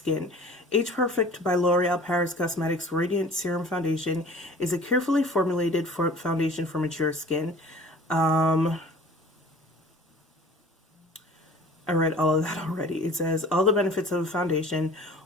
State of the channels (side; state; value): both; normal; correlation 0.46